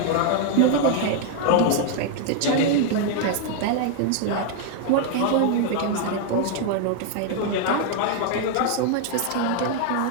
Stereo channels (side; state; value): both; different; correlation 0.00